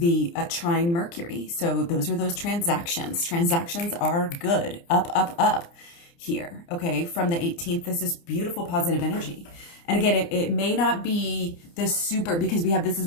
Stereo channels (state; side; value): late; right; 29 ms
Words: trine Mercury. So those are those transactions. Transactions are good. Up, up, up here. Okay. From the 18th, this is beautiful, positive energy. And again, it may not be the super, because we have, this